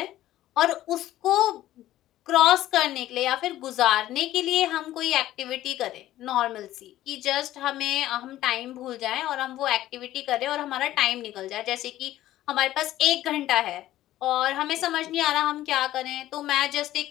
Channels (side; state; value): right; quieter; 14.1 dB